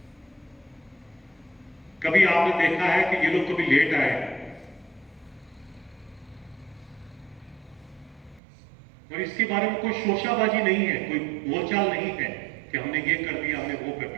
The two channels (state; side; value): drops out; left; at 8.4 s